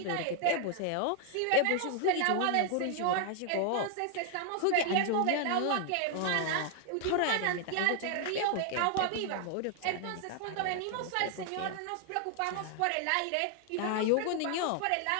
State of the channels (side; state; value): both; different; correlation 0.00